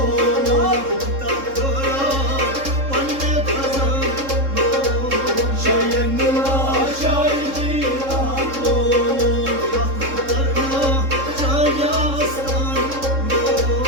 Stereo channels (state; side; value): late; left; 3.7 ms